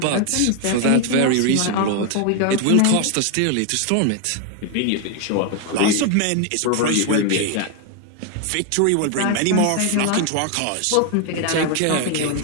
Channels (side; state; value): both; different; correlation 0.01